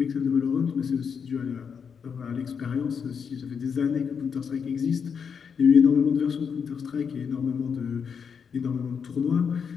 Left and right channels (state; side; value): quieter; right; 6.6 dB